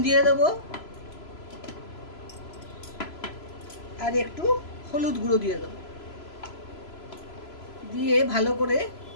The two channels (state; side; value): late; right; 3.0 ms